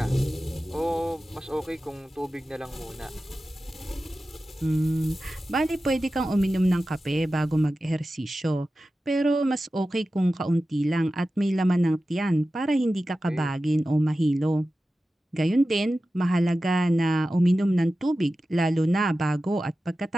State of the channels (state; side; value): normal; both; correlation 0.94